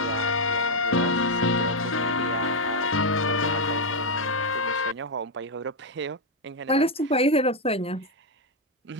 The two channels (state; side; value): normal; both; correlation 0.02